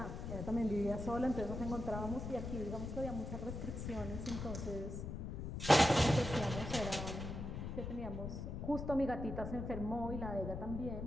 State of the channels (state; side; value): noise; left; rumble, 5 dB below the sound